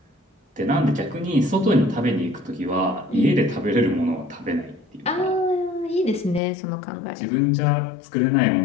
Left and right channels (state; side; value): drops out; right; at 6.4 s